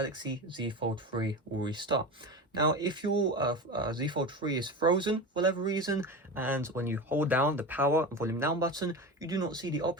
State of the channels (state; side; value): normal; both; correlation 0.27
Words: Z Fold 3 will restart. Now, if your Z Fold 3 is frozen for whatever reason, and when you hold down the power and volume down button, you do not see the